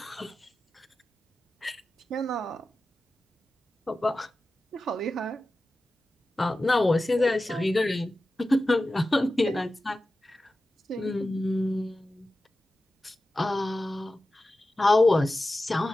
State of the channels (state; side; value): normal; both; correlation 0.94